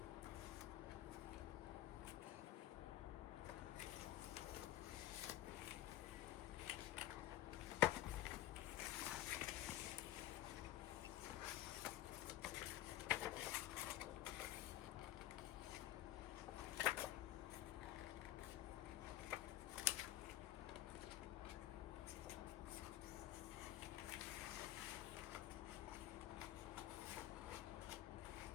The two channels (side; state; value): right; quieter; 14.0 dB